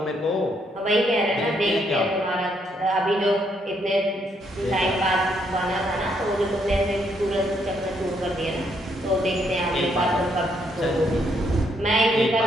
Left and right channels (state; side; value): normal; both; correlation 0.73